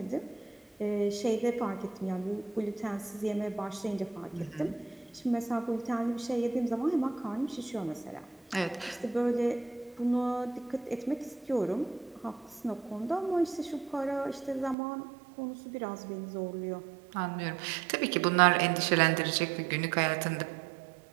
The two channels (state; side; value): drops out; left; at 14.8 s